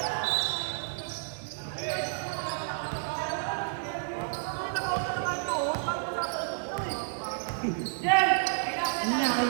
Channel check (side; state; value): left; silent; digital silence